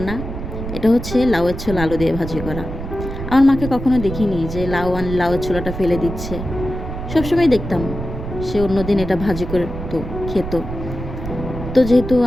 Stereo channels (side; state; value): right; noise; rumble, 7 dB below the sound